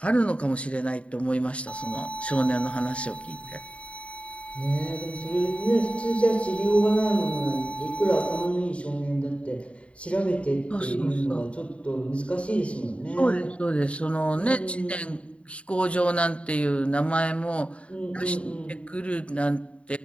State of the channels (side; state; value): right; late; 0.062 ms